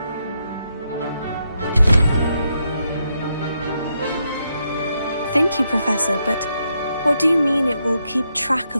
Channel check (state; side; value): inverted; both; correlation -0.80